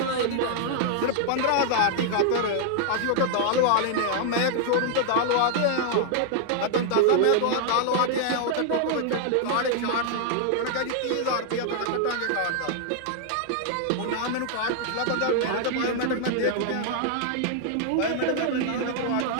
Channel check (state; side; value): different; both; correlation -0.01